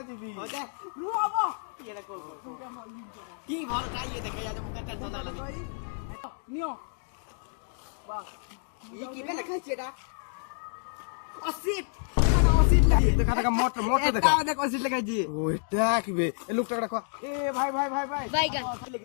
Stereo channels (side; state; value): right; silent; 58 dB below the other